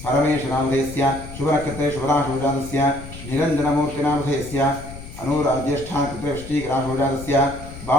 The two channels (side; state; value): left; noise; rumble, 13 dB below the sound